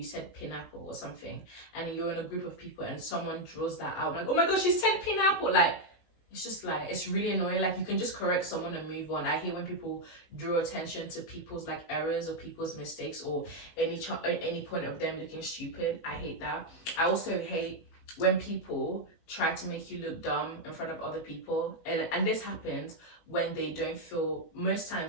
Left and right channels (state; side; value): late; right; 19 ms